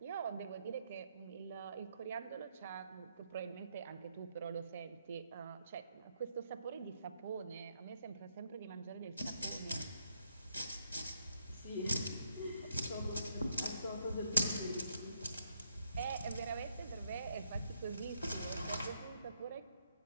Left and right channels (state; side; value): inverted; both; correlation -0.76